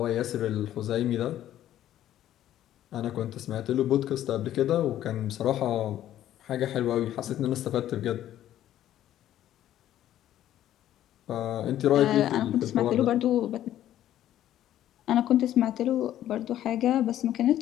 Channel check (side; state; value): right; quieter; 12.3 dB